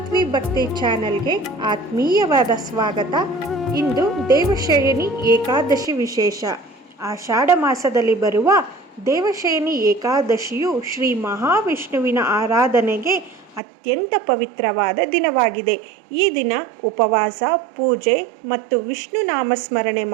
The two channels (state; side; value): drops out; left; at 13.6 s